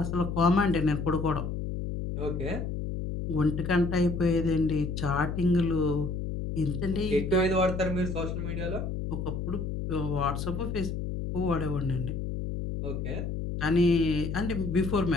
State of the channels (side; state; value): left; noise; hum, 4 dB below the sound